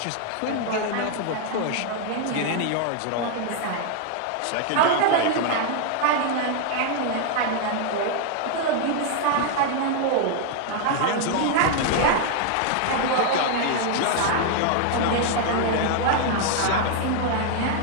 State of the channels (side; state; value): both; different; correlation 0.00